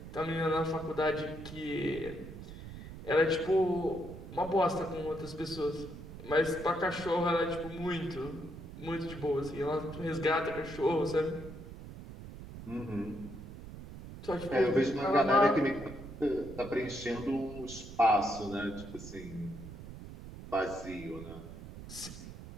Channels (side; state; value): right; noise; rumble, 12 dB below the sound